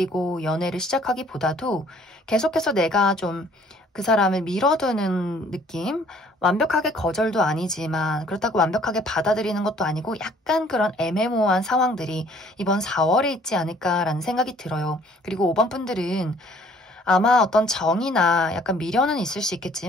연애를 시작하기보다도 계속해서 내가 좀 그 사람을 밀어두는 느낌? 완벽하게 거절도 아니지만 그렇다고 완벽하게 받아들이는 것도 아니고 약간 그런 애매모호한 상황들이 이번 4월에 있지 않을까라는 생각이 들어요. 그리고 5번 분들은 아마 어떤 정이나 약간 미련은 있을 수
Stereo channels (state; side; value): normal; both; correlation 0.58